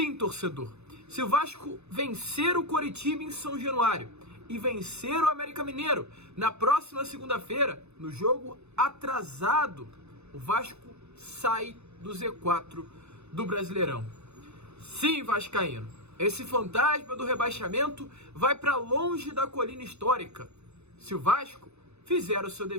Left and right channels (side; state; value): left; late; 0.81 ms